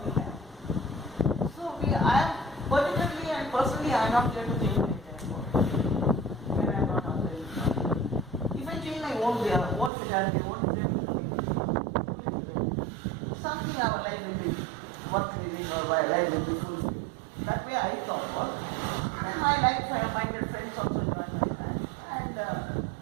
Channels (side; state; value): left; drops out; at 9.9 s